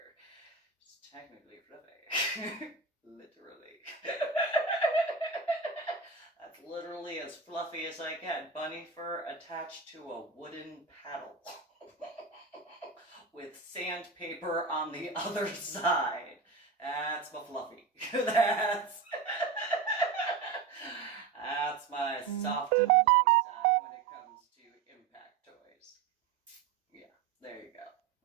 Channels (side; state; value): left; quieter; 5.0 dB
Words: It's technically fluffy. Literally. That's literally as fluffy as I get. Bunny fur attached to a wooden paddle. With sandpaper on the other side. That's my fluffy. That's my soft and fluffy side when it comes to impact toys. Yeah, there you go.